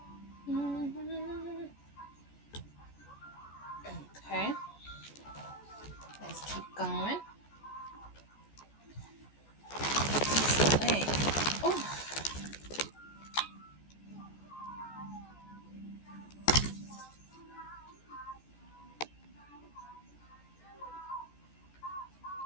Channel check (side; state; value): right; late; 14 ms